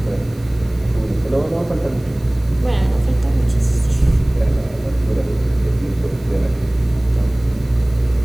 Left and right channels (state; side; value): noise; right; hiss, 28 dB below the sound